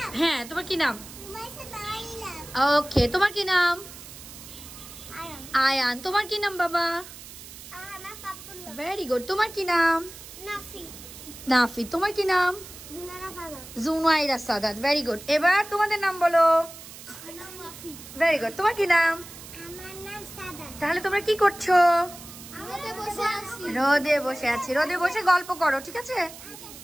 হ্যাঁ, তোমার কি নাম? ওকে, তোমার কি নাম? আয়ান। তোমার কি নাম বাবা? Very good. তোমার কি নাম? নাফি। তোমার কি নাম? জুনাইরা সাদাত। Very good. এবার তোমাদের নাম বলো। Very good. তোমার কি নাম? তাহলে তোমরা কি করছো? রোদে বসে আছি। রোদে বসে গল্প করো, ঠিক আছে?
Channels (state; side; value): noise; right; hiss, 15 dB below the sound